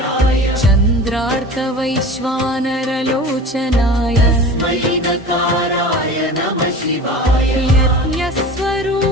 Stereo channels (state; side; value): normal; both; correlation 0.36